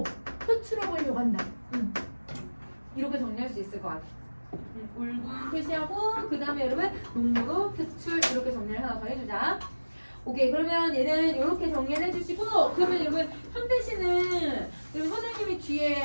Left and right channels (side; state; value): both; inverted; correlation -1.00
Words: 표출해 보려고 한다. 이렇게 정리할 수 있을 것 같아. 울분 표시하고 그 다음에 여러분 농무로 표출 이렇게 정리를 하나 더 해주자. 오케이, 그러면 얘는 이렇게 정리를 해주시고 그러면 여러분 현대시는 여러분 선생님이